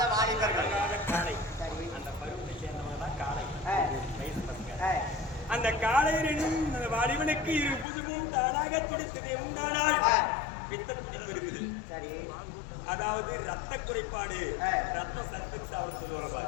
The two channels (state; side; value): drops out; right; at 7.9 s